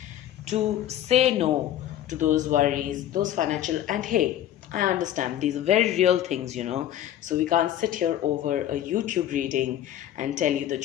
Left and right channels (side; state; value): right; quieter; 11.9 dB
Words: to say no to those worries, those financial, and hey, I understand these are very real things, So we can't sit here over a YouTube reading and tell you